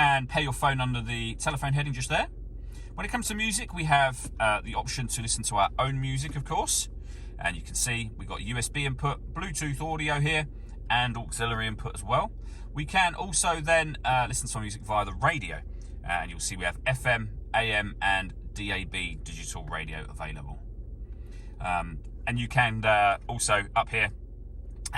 pair your phone under the telephone heading just there. When it comes to music, we have the option to listen to our own music, of course. And you can see we've got USB input, Bluetooth audio here, and auxiliary input as well. We can also then listen to music via the radio, and you'll see we have FM, AM, and DAB digital radio available. And you can also up here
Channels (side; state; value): both; identical; correlation 1.00